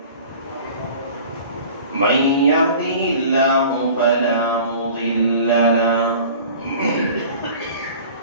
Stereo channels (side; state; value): both; inverted; correlation -0.44